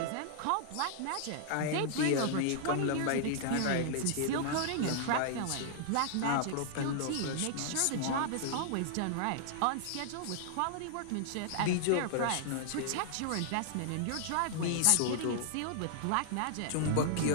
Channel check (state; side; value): different; both; correlation -0.01